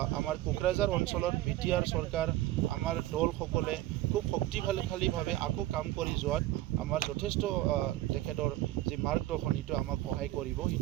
আমাৰ কোকৰাঝাৰ অঞ্চলত BTR চৰকাৰ আমাৰ দলসকলে খুব শক্তিশালীভাৱে আকৌ কাম কৰি যোৱাত আমাৰ যথেষ্ট তেখেতৰ যি মাৰ্গদৰ্শন সেইটো আমাক সহায় কৰিব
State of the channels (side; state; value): left; quieter; 15.6 dB